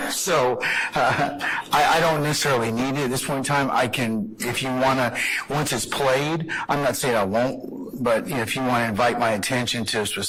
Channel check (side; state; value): both; identical; correlation 1.00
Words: So I don't necessarily need it at this point in time. I can, if you want to, once it's played, I'm not saying I won't, but if you want to invite my attention to a